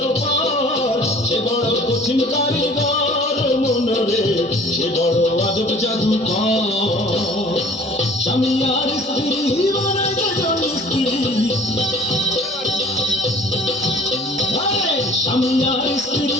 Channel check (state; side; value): normal; both; correlation 0.49